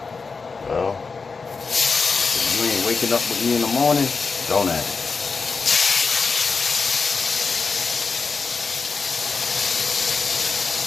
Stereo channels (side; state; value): right; quieter; 4.7 dB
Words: Well, if you ain't waking up with me in the morning, don't ask.